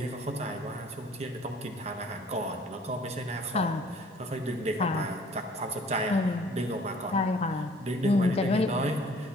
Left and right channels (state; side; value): normal; both; correlation 0.54